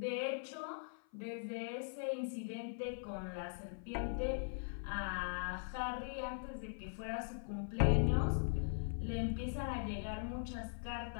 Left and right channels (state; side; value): silent; right; 50 dB below the other